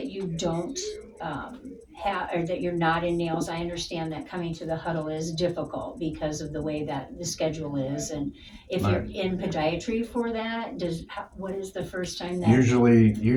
don't have, or that you're not in nails. I understand that coming to the huddle is difficult because of the way that the schedule is, and if you're in podiatry for that, what is the first time that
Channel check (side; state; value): both; identical; correlation 1.00